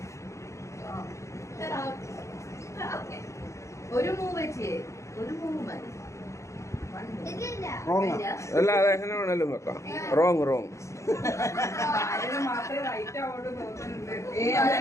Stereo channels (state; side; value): late; right; 0.14 ms